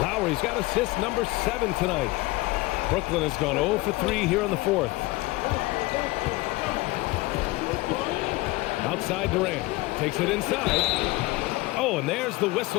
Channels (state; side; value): quieter; right; 21.1 dB